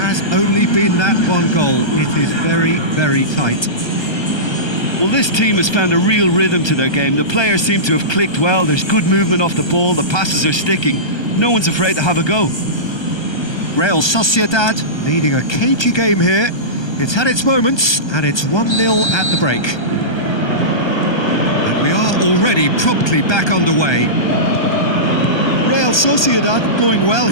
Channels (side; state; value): right; late; 1.2 ms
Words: only been that one goal. It is very, very tight. Well, this team has found a real rhythm to their game. The players seem to have clicked well. There's good movement off the ball. The passes are sticking. No one's afraid to have a go. Real Sociedad leading a cagey game here. It's had its moments, and it's 1-0 at the break. We are already promptly back underway. Real Sociedad going well